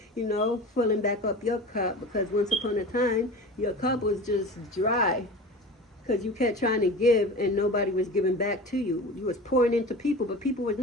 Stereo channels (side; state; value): both; normal; correlation 0.34